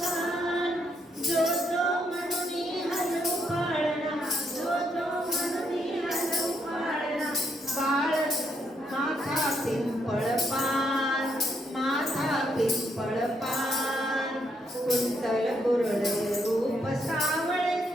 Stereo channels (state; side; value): normal; both; correlation 0.76